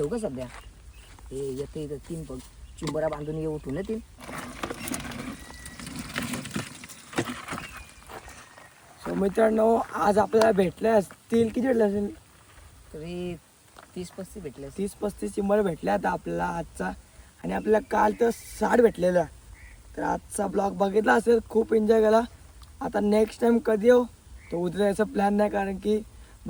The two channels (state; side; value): identical; both; correlation 1.00